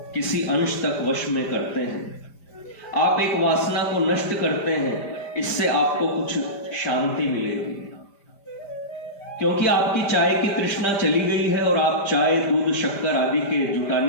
किसी अंश तक वश में करते हैं। आप एक वासना को नष्ट करते हैं, इससे आपको कुछ शांति मिलेगी, क्योंकि आपकी चाय की तृष्णा चली गई है और आप चाय, दूध, शक्कर आदि के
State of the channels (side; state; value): right; late; 5.0 ms